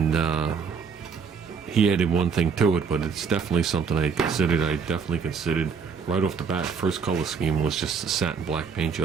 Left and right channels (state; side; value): quieter; left; 6.0 dB